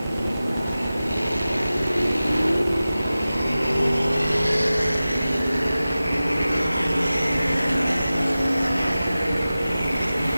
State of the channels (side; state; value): both; inverted; correlation -0.96